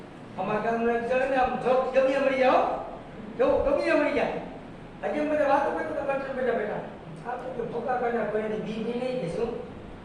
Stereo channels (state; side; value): identical; both; correlation 1.00